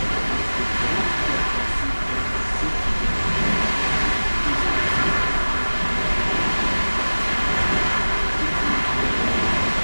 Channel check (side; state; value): both; inverted; correlation -1.00